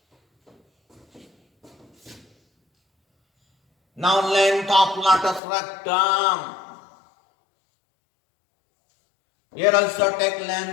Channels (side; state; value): right; drops out; at 5.4 s